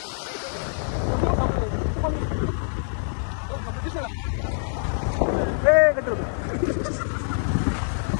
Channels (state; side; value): silent; right; 55 dB below the other